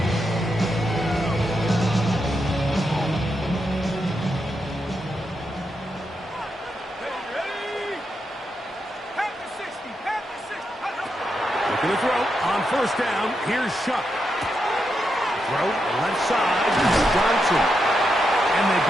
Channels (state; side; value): normal; both; correlation 0.84